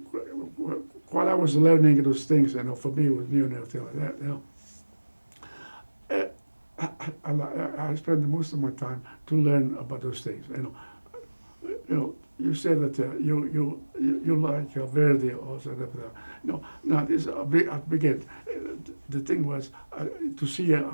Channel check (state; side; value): inverted; both; correlation -1.00